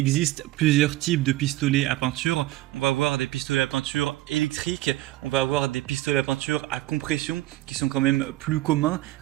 plusieurs types de pistolets à peinture. On va avoir des pistolets à peinture électriques, on va avoir des pistolets à peinture à compression qui sont quand même plus communs,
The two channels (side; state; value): left; quieter; 16.9 dB